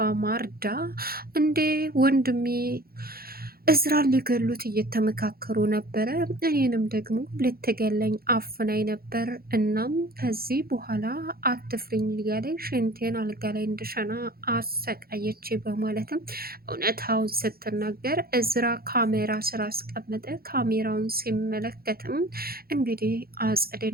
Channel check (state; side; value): late; left; 0.44 ms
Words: ማርዳ እንዴ ወንድሜ እዝራን ሊገሉት እየተመካከሩ ነበረ፣ እኔንም ደግሞ ልትገለኝ አፍናኝ ነበር። እናም ከዚህ በኋላ አትፍሪኝ እያለኝ ሽንቴን አልጋ ላይ እንድሸና አሰቃየች በማለትም እውነታውን ስትናገር እዝራ ካሜራ ስራ አስቀመጠ። ካሜራውን ሲመለከትም እንግዲህ